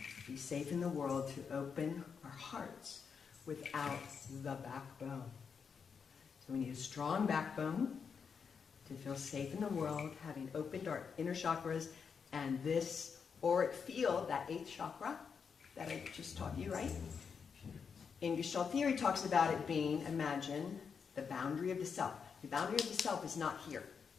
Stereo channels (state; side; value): quieter; right; 6.2 dB